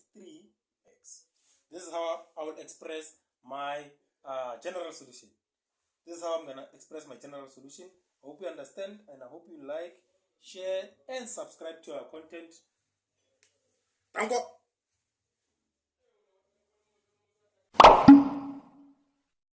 3x. This is how I will express my general solution. This is how I'm going to express my general solution. I hope you understand, and I hope you like, share, and subscribe to our content. Thank you.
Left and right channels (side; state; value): both; identical; correlation 1.00